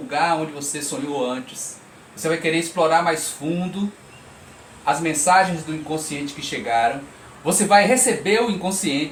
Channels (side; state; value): both; identical; correlation 1.00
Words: onde você sonhou antes, você vai querer explorar mais fundo as mensagens do inconsciente que chegaram, você vai receber o